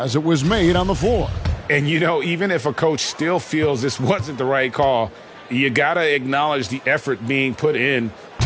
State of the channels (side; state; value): both; identical; correlation 1.00